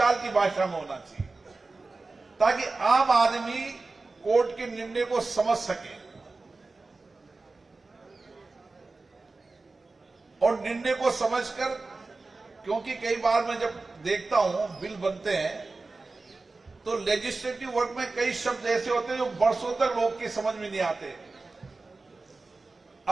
की भाषा में होना चाहिए, ताकि आम आदमी कोर्ट के निर्णय को समझ सके और निर्णय को समझकर, क्योंकि कई बार मैं जब देखता हूं बिल बनते हैं तो लेजिस्लेटिव वर्क में कई शब्द ऐसे होते हैं जो वर्षों तक लोग की समझ में नहीं आते।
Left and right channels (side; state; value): left; quieter; 3.6 dB